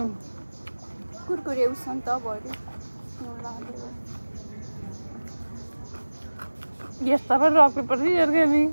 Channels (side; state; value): both; inverted; correlation -1.00